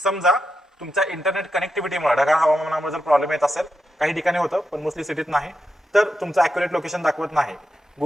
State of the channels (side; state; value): both; normal; correlation 0.87